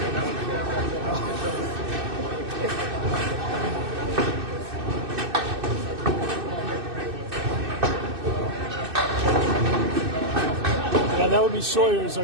Yeah, that would be Sawyer's,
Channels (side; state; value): left; late; 2.6 ms